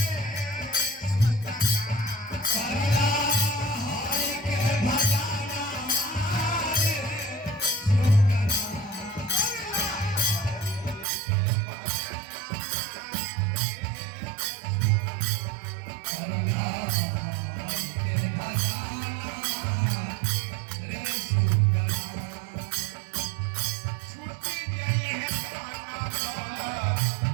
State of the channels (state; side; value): drops out; left; at 11.1 s